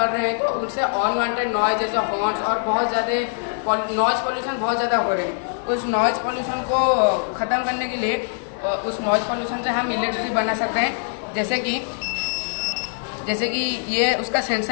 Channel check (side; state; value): right; silent; digital silence